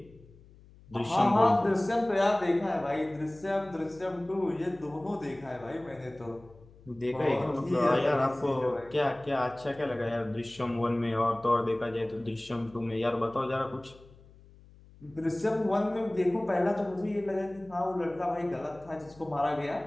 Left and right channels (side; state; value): left; noise; hum, 24 dB below the sound